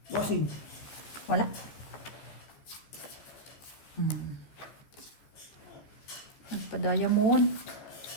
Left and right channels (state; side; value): late; right; 14 ms